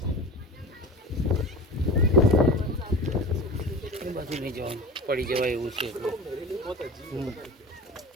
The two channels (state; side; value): normal; both; correlation 0.33